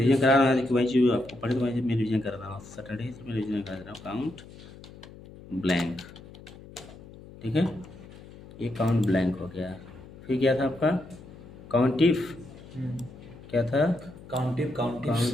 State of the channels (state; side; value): noise; left; hum, 18 dB below the sound